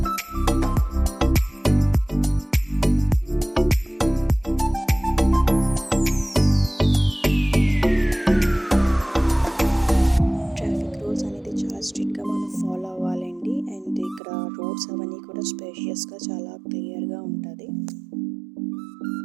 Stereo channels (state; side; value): drops out; left; at 14.2 s